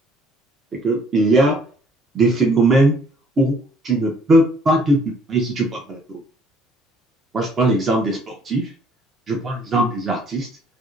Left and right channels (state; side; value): normal; both; correlation 0.61